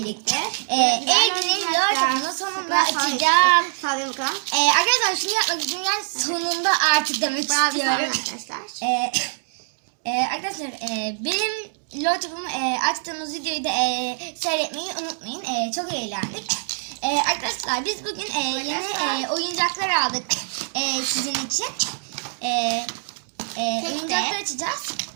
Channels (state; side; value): silent; left; digital silence